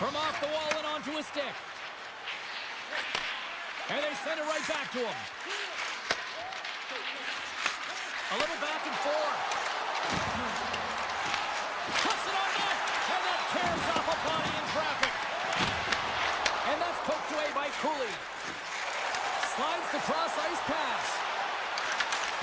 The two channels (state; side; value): identical; both; correlation 1.00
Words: From off the wall and onto his stick. And they send it right back to him. A little back and forth. Puts it on net, and that tears off a body in traffic. And that's poked away by Cooley. Slides the cross-ice pass.